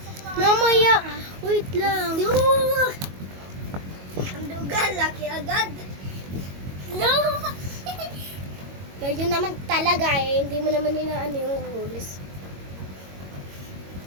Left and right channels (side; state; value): left; late; 22 ms